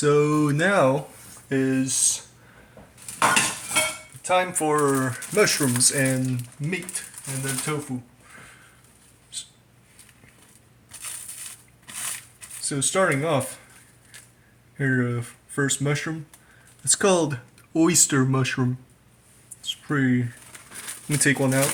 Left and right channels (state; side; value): identical; both; correlation 1.00